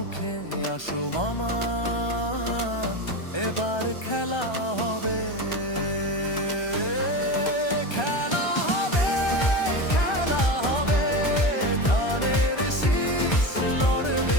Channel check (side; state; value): right; late; 1.3 ms